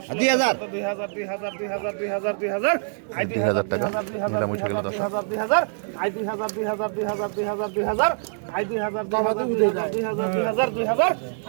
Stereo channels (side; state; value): left; silent; 62 dB below the other